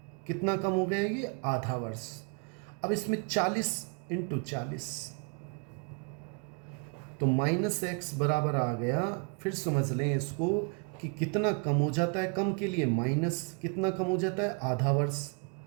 कितना कम हो गया ये? आधा वर्ष। अब इसमें 40 इंटू 40, तो -x बराबर आ गया। फिर समझ लें इसको कि कितना कम हो जाता है, कम के लिए माइनस, कितना कम हो जाता है? आधा वर्ष।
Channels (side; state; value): left; quieter; 35.8 dB